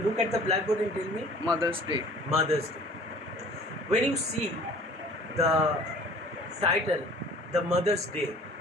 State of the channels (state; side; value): normal; both; correlation 0.49